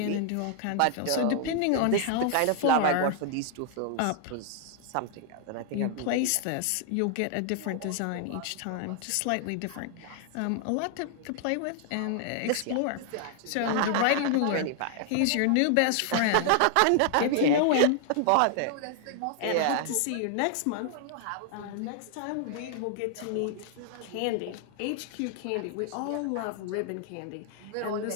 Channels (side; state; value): both; different; correlation 0.00